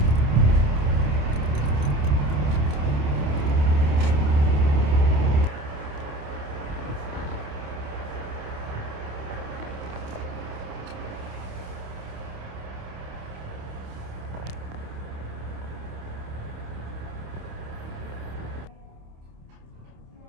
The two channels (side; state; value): left; late; 27 ms